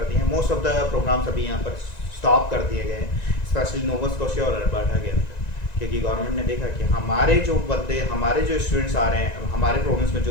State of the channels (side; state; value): right; late; 1.9 ms